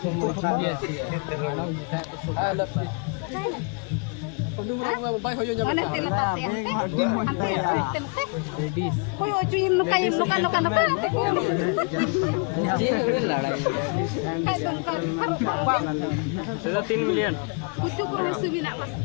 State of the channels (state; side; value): quieter; right; 35.8 dB